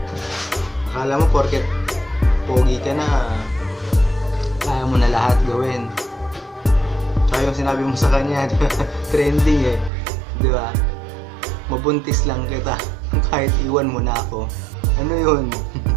Akala mo porket pogi ka na, kaya mo na lahat gawin. Tsaka yung sinabi mo sa kanya, trending diba? Mabuntis lang kita kahit iwan mo na ako. Ano yun?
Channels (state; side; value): drops out; left; at 9.9 s